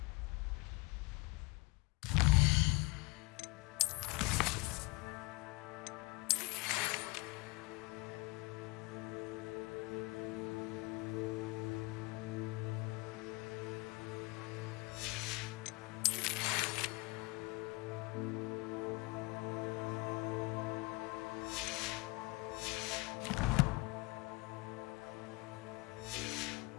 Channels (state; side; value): quieter; right; 25.1 dB